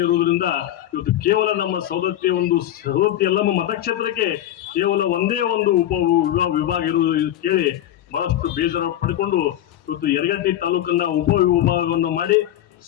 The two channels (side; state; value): right; quieter; 12.3 dB